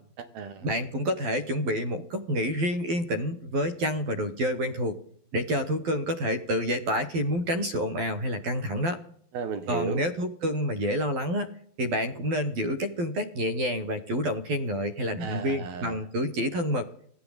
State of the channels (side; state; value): left; late; 12 ms